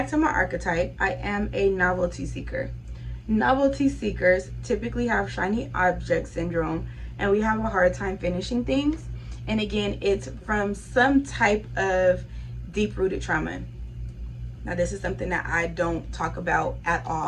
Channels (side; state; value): both; identical; correlation 1.00